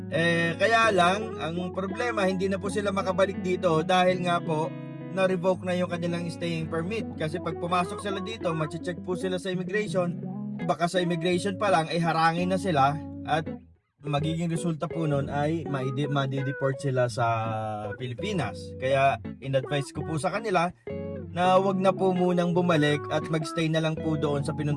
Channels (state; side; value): identical; both; correlation 1.00